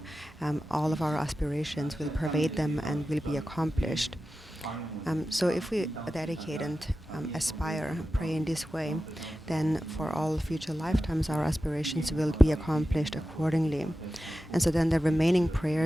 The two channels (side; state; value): both; normal; correlation 0.93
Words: all of our aspirations will pervade them and will be accomplished. So if we dedicate and aspire, pray in this way, then for all future lifetimes our aspirations will be accomplished accordingly. And so then the remaining